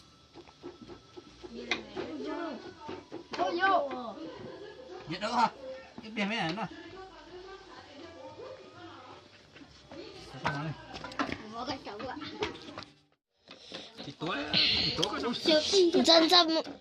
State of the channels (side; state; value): both; identical; correlation 1.00